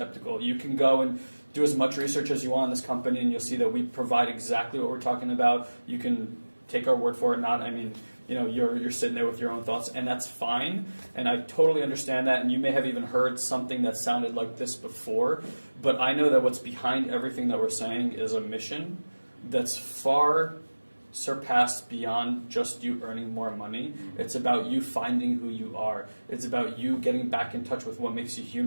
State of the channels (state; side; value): inverted; both; correlation -1.00